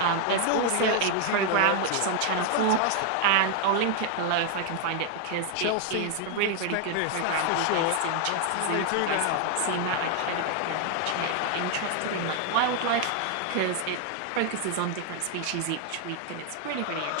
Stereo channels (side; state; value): both; different; correlation 0.00